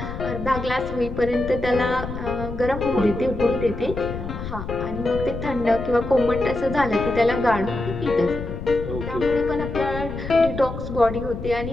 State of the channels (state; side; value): noise; left; rumble, 8 dB below the sound